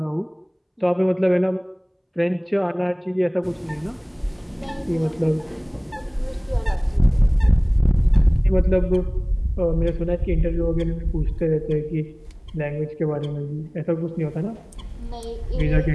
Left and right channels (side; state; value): both; identical; correlation 1.00